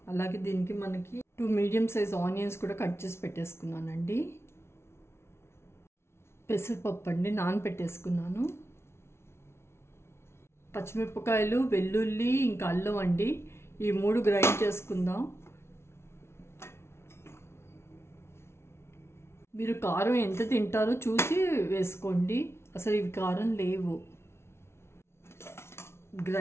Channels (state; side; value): late; right; 0.12 ms